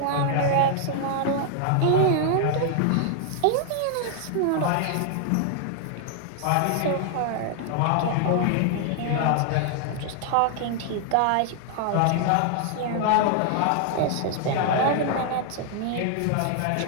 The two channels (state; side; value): different; both; correlation 0.00